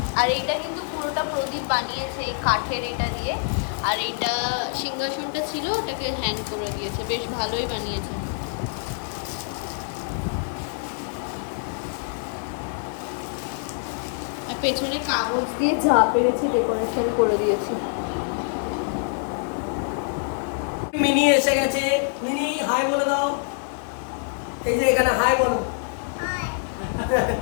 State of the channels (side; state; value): right; silent; 62 dB below the other